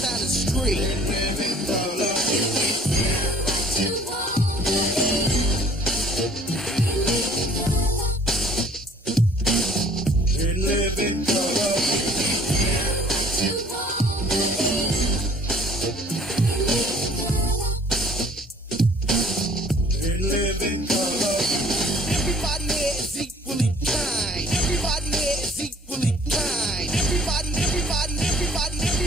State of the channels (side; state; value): both; normal; correlation 0.54